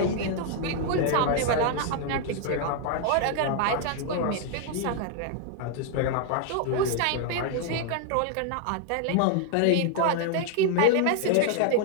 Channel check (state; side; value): different; both; correlation 0.00